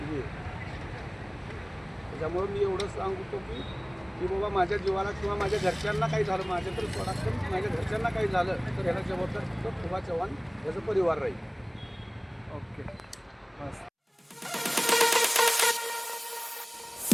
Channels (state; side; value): identical; both; correlation 1.00